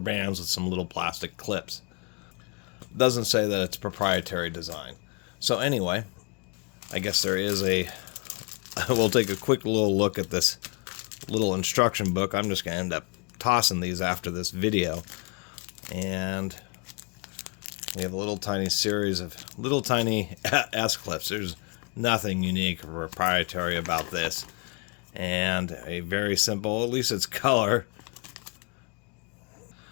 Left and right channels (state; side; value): quieter; right; 33.1 dB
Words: bands with some little plastic clips. Doesn't say that it's proprietary design. So anyway, I guess there is a... We'll take a quick little look at this little instruction book. I'm just going to end up tossing these after this video. And we have a little tiny series of little tiny S-clips. There's nothing unique or proprietary about this. And a very simple, at least it's color,